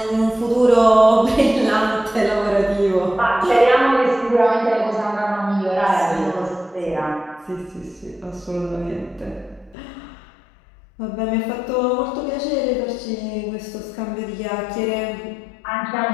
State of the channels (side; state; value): right; drops out; at 9.8 s